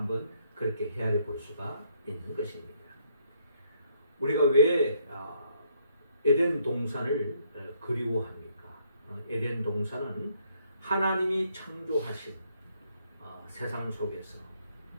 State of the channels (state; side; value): inverted; both; correlation -0.70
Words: 그렇게 헤아려 볼 수가 있는 것입니다. 우리가 왜 에덴 동산을 그리워합니까? 에덴 동산은 하나님이 창조하신 세상 속에서